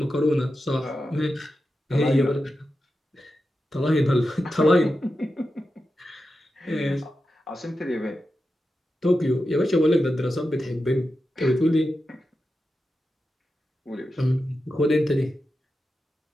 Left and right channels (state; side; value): normal; both; correlation 0.90